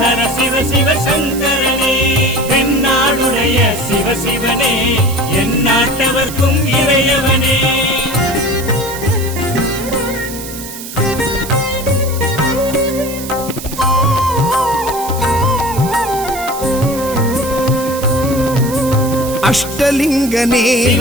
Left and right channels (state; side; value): noise; right; hiss, 11 dB below the sound